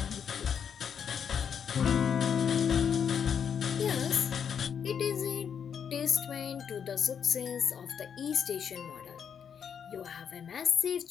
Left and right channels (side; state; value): right; quieter; 7.6 dB